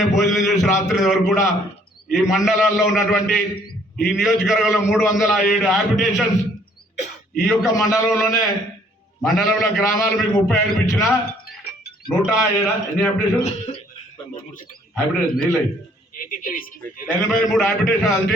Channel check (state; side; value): normal; both; correlation 0.62